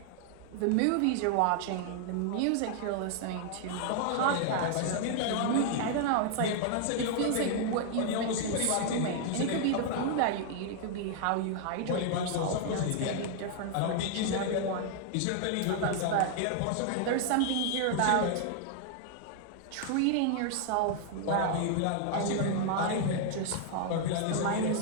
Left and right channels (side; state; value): both; different; correlation 0.00